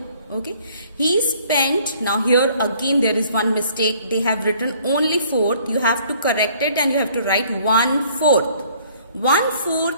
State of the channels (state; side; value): inverted; both; correlation -0.58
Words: Okay. He spent, now here again there is one mistake. They have written only 4th. You have to correct it and you have to write 1/4.